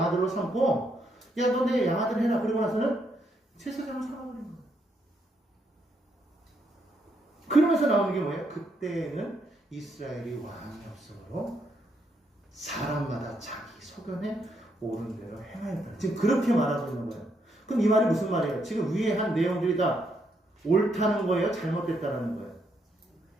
삼고 야, 너 내 양아들 해라. 그러고 나서는 제사장을 삼아버린 거예요. 그러면서 나오는 게 뭐예요? 그때는 이스라엘이 왕이 없으므로 사람마다 자기 소견에 옳은 대로 행하였다. 지금 그렇게 말하고 있는 거예요. 그럼 이 말이 무슨 말이에요? 지금 위에 한 내용들이 다 옳다는 거예요? 잘못됐다는 거예요?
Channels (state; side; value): normal; both; correlation 0.76